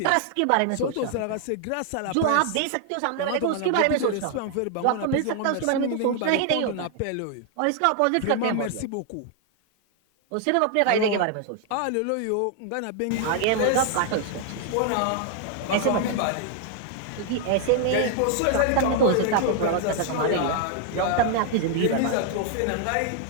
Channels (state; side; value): different; both; correlation 0.00